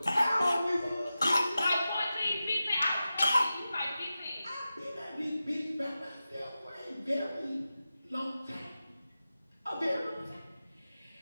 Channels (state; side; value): inverted; both; correlation -0.93